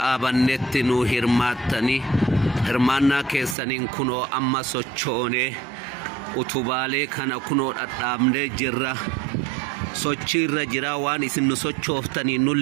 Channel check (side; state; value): left; drops out; at 3.6 s